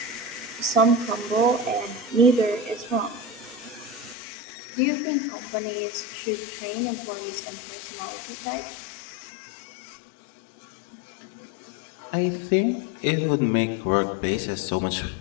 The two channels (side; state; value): right; drops out; at 4.2 s